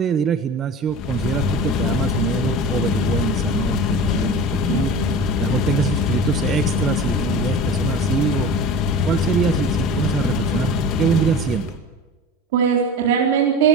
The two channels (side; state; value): both; normal; correlation 0.33